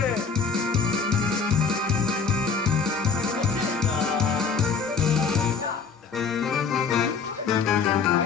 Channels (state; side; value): quieter; right; 5.5 dB